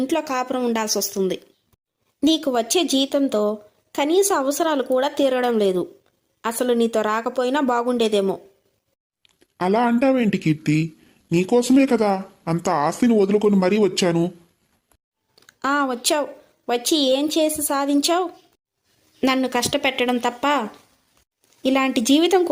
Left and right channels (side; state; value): both; identical; correlation 1.00